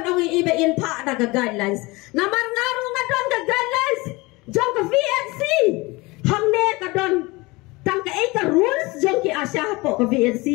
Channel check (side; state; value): right; quieter; 23.5 dB